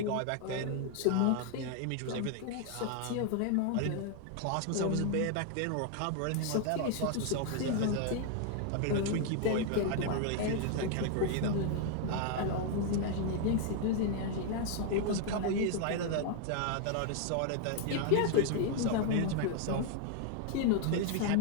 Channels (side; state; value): both; different; correlation 0.00